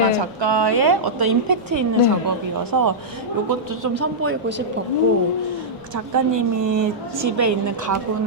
네. 작가의 어떤 임팩트 있는 네. 작업이어서 이것도 좀 선보이고 싶었고 작가님이 집에 있는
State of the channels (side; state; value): both; normal; correlation -0.10